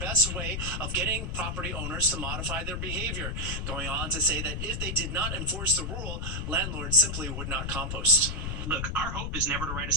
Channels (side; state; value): left; noise; rumble, 3 dB below the sound